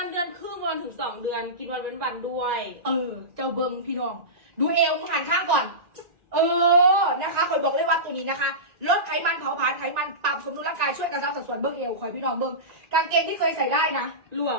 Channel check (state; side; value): late; left; 1.9 ms